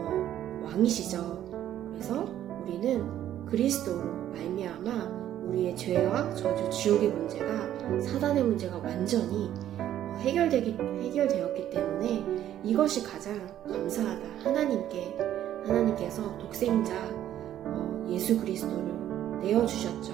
왕이시죠. 그래서 우리는 그리스도로 말미암아 우리의 죄와 저주, 지옥의 문제가 사단의 문제가 완전히 해결되었기 때문에 이것이 가장 감사하다. 하나님께서 독생자 예수 그리스도를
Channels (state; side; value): quieter; left; 11.7 dB